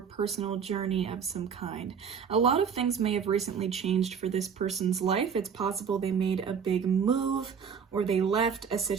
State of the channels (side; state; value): left; quieter; 6.8 dB